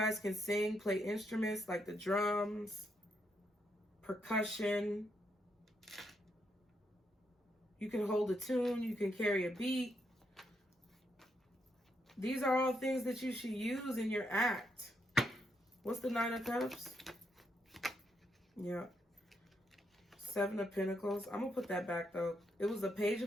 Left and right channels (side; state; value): both; normal; correlation 0.79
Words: can sing, play instruments like the drums, percussion. You can hold a tune, you can carry a beat. These are all things that you should use in your act. What's the Nine of Cups? Yeah. Seven of Pentacles. I'm going to put that back, though. It was a Page